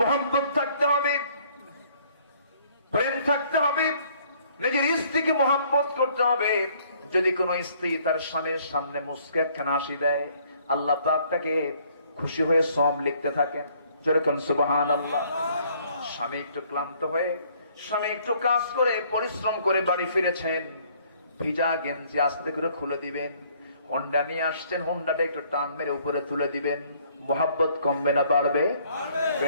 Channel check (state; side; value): inverted; both; correlation -0.62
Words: থাকতে হবে, প্রেম থাকতে হবে, নিজের স্ত্রীকে মুহাব্বত করতে হবে। যদি কোন স্ত্রী তার স্বামীর সামনে মুস্কে একখানা হাসি দেয়, আল্লাহ পাক তাকে খুশি হয়ে সওয়াব লিখতে থাকেন। যেরকম সুবহানাল্লাহ। স্বামী একটু ক্লান্ত হয়ে, স্বামী একটু কাজ করে পরিশ্রম করে বাড়ি ফিরেছেন, ভিজা গেঞ্জি আস্তে করে খুলে দিবেন। হোন্ডা নিয়ে আসছেন, হোন্ডাটা একটু টান মেরে উপরে তুলে দিবেন। মুহাব্বত কমবে না বাড়বে?